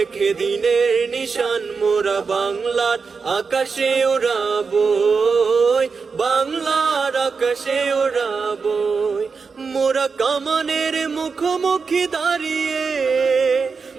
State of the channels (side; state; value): left; quieter; 5.1 dB